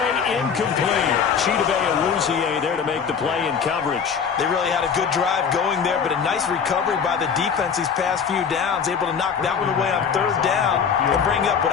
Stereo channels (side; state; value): right; quieter; 6.7 dB